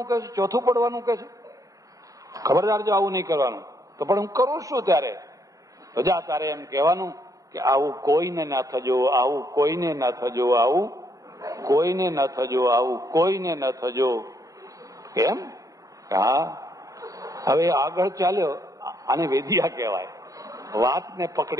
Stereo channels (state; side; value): late; left; 0.16 ms